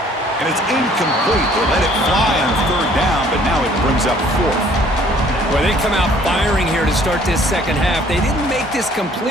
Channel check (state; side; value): normal; both; correlation 0.58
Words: And it's incomplete. They let it fly on 3rd down, but now it brings up 4th. Well, they come out firing here to start this second half. They didn't make this